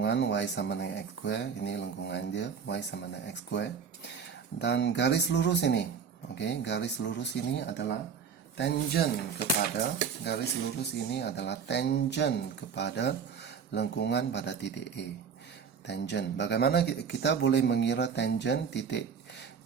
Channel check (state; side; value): quieter; left; 6.6 dB